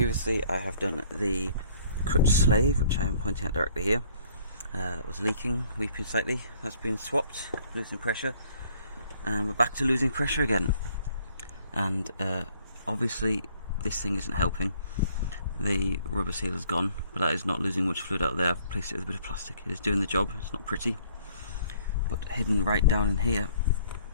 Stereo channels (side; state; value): both; inverted; correlation -0.60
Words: I have done the clutch slave, which I am pointing at directly here. That was leaking, weeping slightly. That's been swapped, losing pressure, and we're back to losing pressure again. And obviously this thing isn't helping. The rubber seal is gone, but that is not losing much fluid out there. I've replaced it with a bit of plastic. It is doing the job. It's not pretty, but hidden right down in here